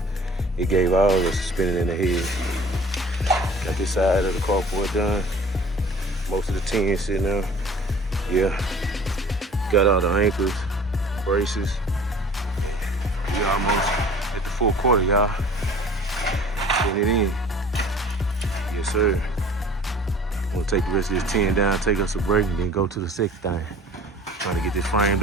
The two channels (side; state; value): both; normal; correlation 0.47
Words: It gave all of us a spinning in the head. Got this side of the carport done. Most of the tin sitting there. Yeah. Got all the anchors, braces. We almost at the full quarter, y'all. Getting it in. Yes, sir. We'll take the rest of this tin down, take us a break, and then go to the second thing. Trying to get this frame